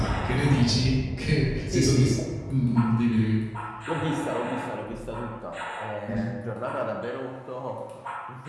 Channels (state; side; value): identical; both; correlation 1.00